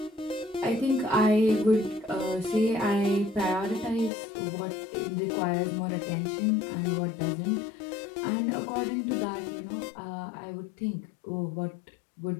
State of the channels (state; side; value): drops out; right; at 4.1 s